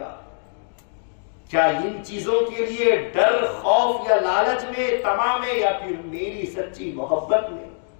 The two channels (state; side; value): silent; right; digital silence